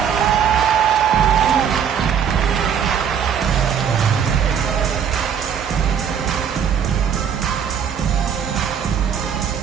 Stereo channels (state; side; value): quieter; left; 7.9 dB